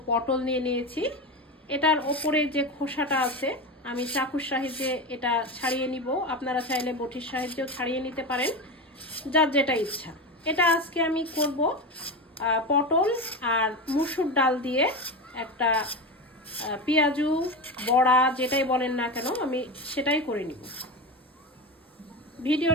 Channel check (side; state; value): both; normal; correlation 0.21